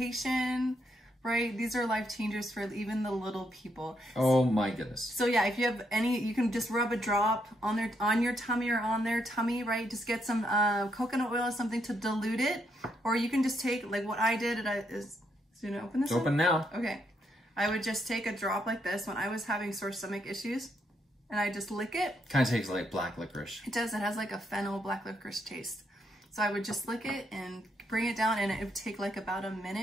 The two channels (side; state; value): both; normal; correlation 0.77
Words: Right? These are life changers for even the little people. Oh my goodness. So yeah, if you have any, you can just rub a drop on your tummy or on their tummy, right? Just get some coconut oil or something to dilute it. Or you can just take, like what I did, is you gonna open this? It's open now. Okay. I would just take a drop like this when I was having sore stomach issues, and I just lick it. Kind of tastes like black licorice. It does. It has like a fennel black licorice taste. So I would just lick it and bring it down, and it would take like about a